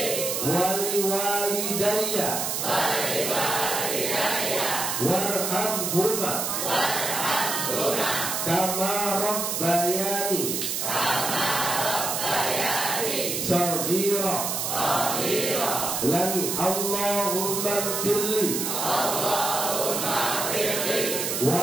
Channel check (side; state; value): right; noise; hiss, 1 dB below the sound